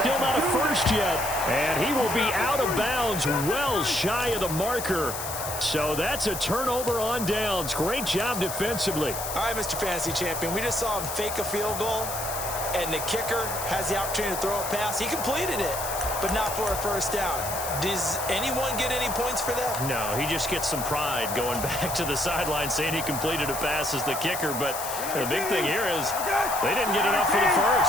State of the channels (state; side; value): noise; left; hiss, 6 dB below the sound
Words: not a first yet. And he will be out of bounds well shy of the marker. So that's a turnover on downs. Great job defensively. All right, Mr. Fantasy Champion, we just saw him fake a field goal, and the kicker has the opportunity to throw a pass. He completed it, but not for a first down. Does anyone get any points for that? No, he just gets some pride going back to the sideline saying he completed a pass as the kicker. But the big thing here is they didn't get enough for the